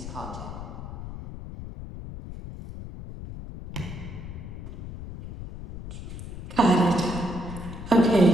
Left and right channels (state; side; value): noise; left; rumble, 10 dB below the sound